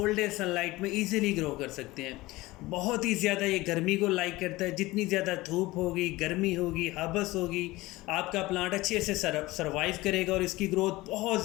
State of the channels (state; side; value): quieter; right; 19.6 dB